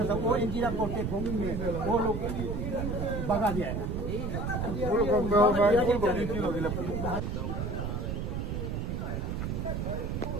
था, वो इंजीनियर करते भूमि में वो लोग भगा दिया है।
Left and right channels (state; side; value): noise; right; rumble, 2 dB below the sound